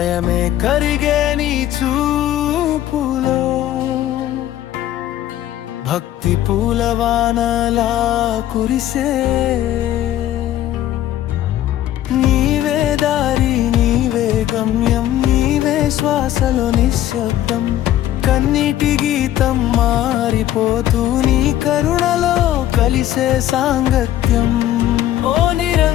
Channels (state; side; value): quieter; right; 12.8 dB